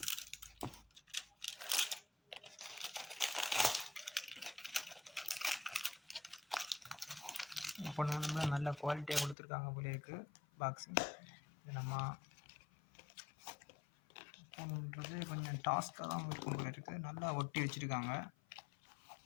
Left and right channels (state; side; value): drops out; right; at 9.3 s